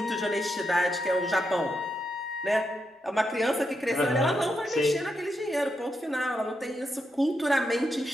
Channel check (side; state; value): both; normal; correlation 0.83